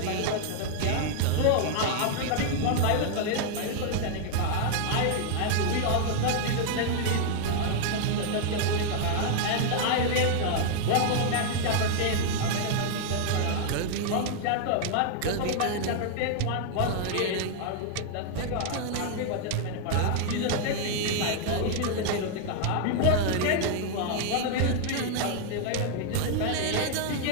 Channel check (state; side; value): different; both; correlation -0.01